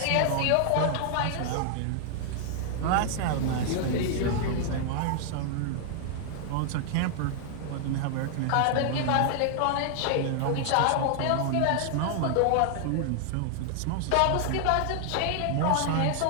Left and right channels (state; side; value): different; both; correlation 0.00